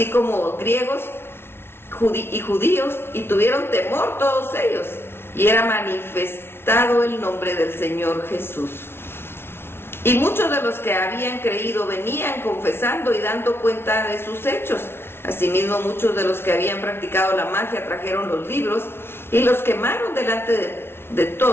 como griegos y judíos, y tuvieron temor todos ellos, y era manifestado el nombre del Señor Jesús. Y muchos de los que habían creído venían confesando y dando cuenta de sus hechos. Asimismo, muchos de los que habían practicado la magia trajeron los libros y los quemaron delante de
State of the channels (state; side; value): late; right; 0.12 ms